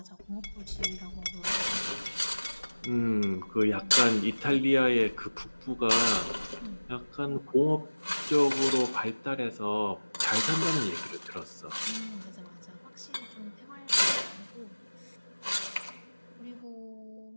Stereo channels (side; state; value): both; inverted; correlation -1.00